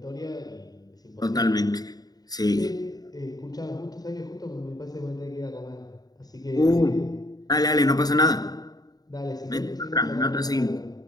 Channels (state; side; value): late; right; 0.19 ms